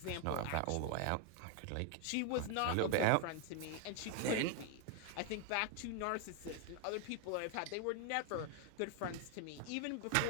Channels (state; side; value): different; both; correlation 0.01